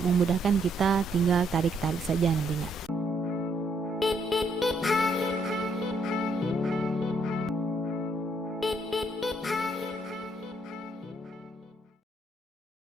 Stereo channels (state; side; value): normal; both; correlation 0.71